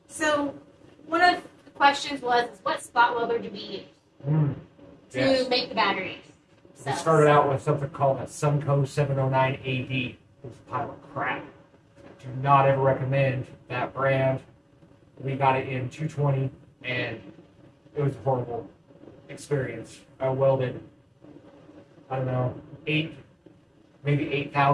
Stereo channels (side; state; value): both; identical; correlation 1.00